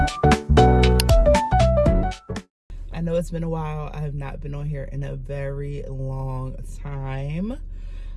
I know it's been a while. I have not been on here in a very long time.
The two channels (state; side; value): identical; both; correlation 1.00